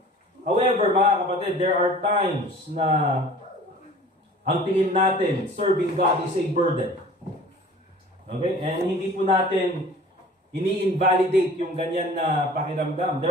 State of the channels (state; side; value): normal; both; correlation 0.46